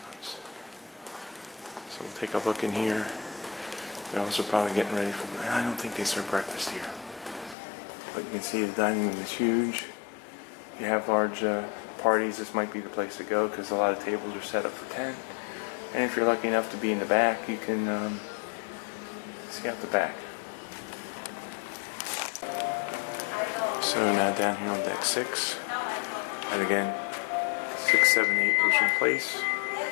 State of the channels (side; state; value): right; drops out; at 7.6 s